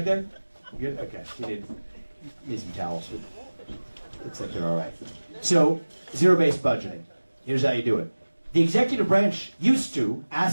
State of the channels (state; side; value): inverted; both; correlation -1.00